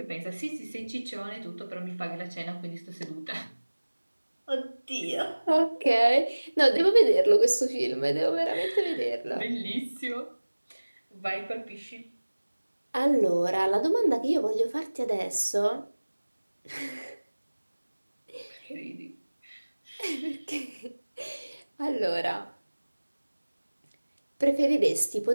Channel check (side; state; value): both; inverted; correlation -1.00